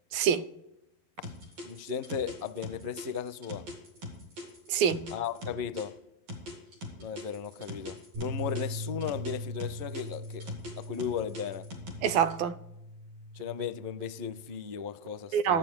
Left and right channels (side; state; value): left; late; 11 ms